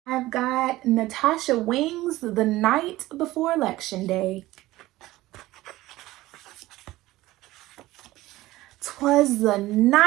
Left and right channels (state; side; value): quieter; left; 17.3 dB